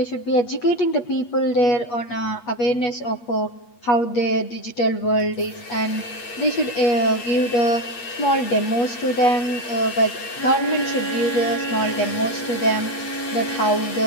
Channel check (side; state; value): right; late; 8.4 ms